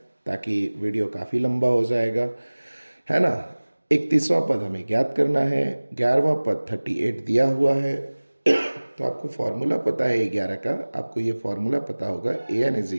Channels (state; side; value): inverted; both; correlation -1.00